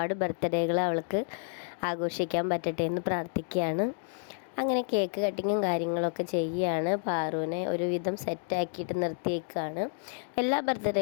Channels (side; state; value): right; silent; 58 dB below the other